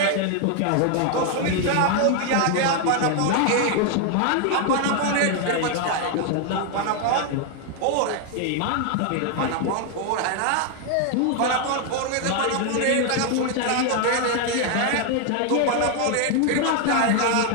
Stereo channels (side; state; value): both; different; correlation 0.00